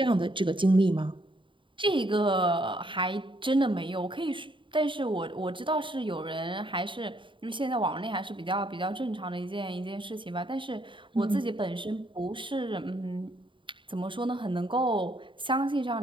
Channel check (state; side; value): late; left; 0.24 ms